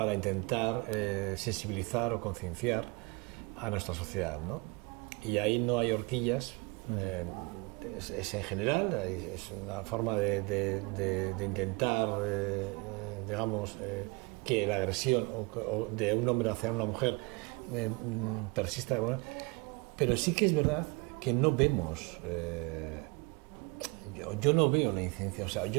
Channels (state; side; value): quieter; left; 27.6 dB